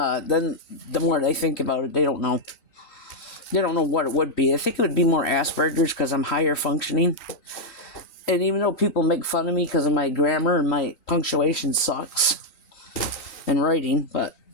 then the more they think about it, they don't know. They don't know what it would be. I think it would be more Asperger's because I'm higher functioning. And even though people make fun of me because of my grammar and my punctuation sucks in writing, but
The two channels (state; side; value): late; right; 3.9 ms